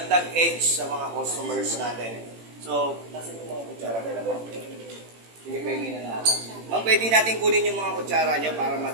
edge sa mga customers natin. So, nasa yung mga kutsara nila ma'am? Sige, pahingin na natin. Ma'am, pwede natin kunin yung mga kutsara nyo para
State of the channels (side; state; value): left; late; 18 ms